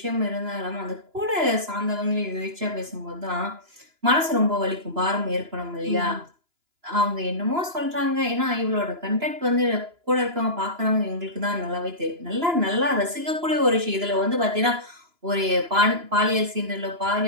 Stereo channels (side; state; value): left; late; 2.9 ms